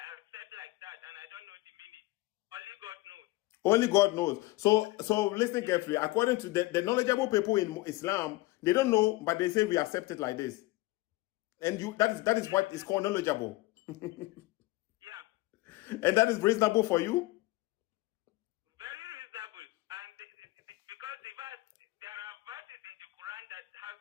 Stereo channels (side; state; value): right; quieter; 20.1 dB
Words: Only God knows. So listen carefully. According to the knowledgeable people in Islam, they don't know, but they say we accept it like this. And that is what is called knowledgeable. Yeah. And that is reasonable for you? Very reasonable. And because there are verses in the Quran that has